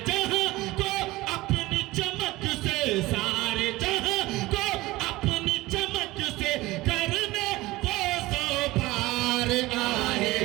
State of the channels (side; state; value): left; quieter; 19.3 dB